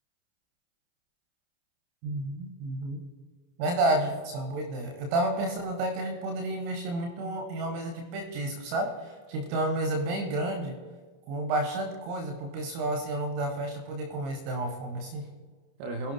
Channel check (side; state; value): left; late; 29 ms